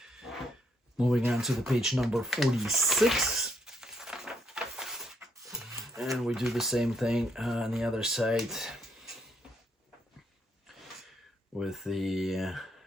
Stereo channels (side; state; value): both; normal; correlation 0.73